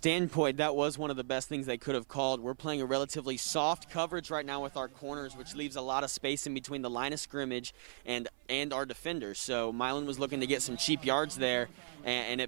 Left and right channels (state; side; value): silent; left; 53 dB below the other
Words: that was one of the best things they could have called. We're playing a relatively soft coverage right now with our corners, which leaves a lot of space in between the line of scrimmage and our defenders. So Milan was looking to get some cheap yards there, and